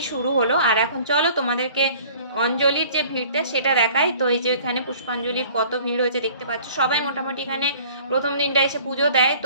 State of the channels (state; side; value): inverted; both; correlation -0.50